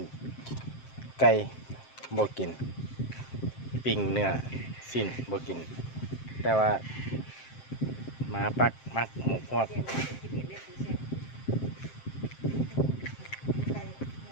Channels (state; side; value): late; right; 7.6 ms